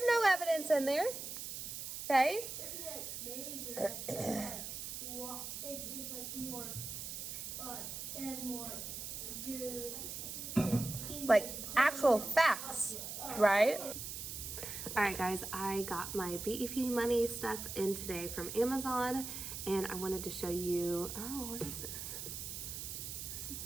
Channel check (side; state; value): right; noise; hiss, 6 dB below the sound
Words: no evidence in there. Okay? It's like more, and more good. Like actual facts, right? All right, guys, I got my BEP money stuff in today from Amazon, and I wanted to show you, oh, what is this? This is